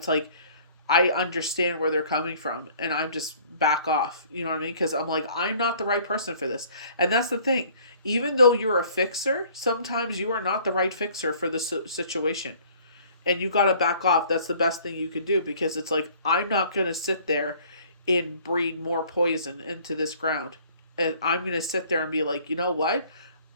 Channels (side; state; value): both; inverted; correlation -0.55